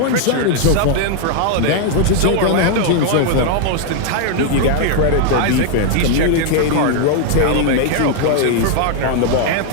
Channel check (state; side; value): different; both; correlation 0.00